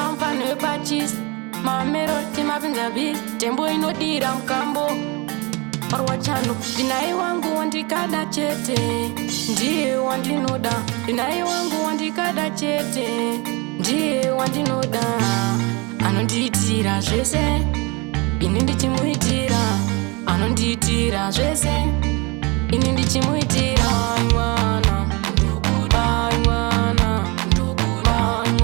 mfano wepachis mameroti mapinza bis tembo inodira mkambo marwa chano dinaye wangu wandikada chete ndiye wandinoda dinaye wangu wandikada chete ndiye wandinoda anondiitira zvese ini ndichimuitira anondiitira zvese ini ndichimuitira mwana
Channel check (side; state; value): left; quieter; 27.2 dB